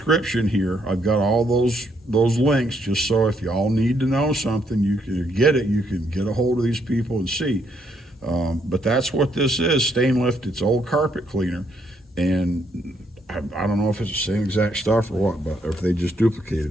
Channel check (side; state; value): both; normal; correlation 0.73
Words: here. I've got all those links, just so if y'all need to know something, you can get it. You can get a hold of these people and see. But that's what this is, stain lift. It's old carpet cleaner, and I don't know if it's the same exact stuff or what, but or if they just